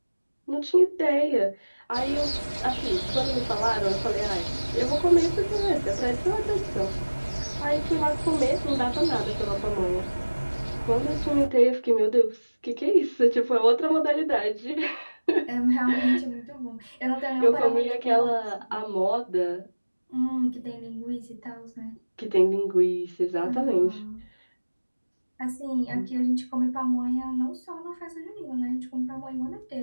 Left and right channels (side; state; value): both; inverted; correlation -1.00